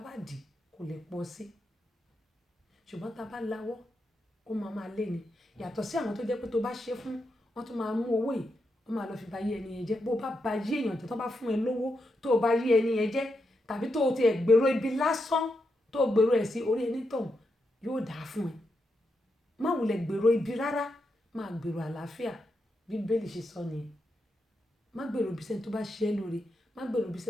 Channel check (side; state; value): both; normal; correlation 0.85